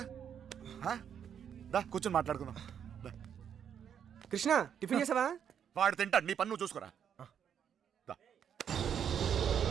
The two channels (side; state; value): left; quieter; 8.4 dB